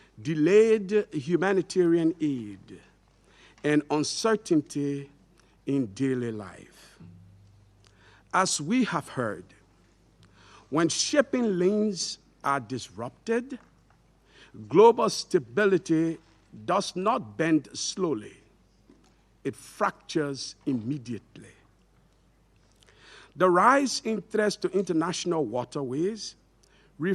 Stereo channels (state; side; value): identical; both; correlation 1.00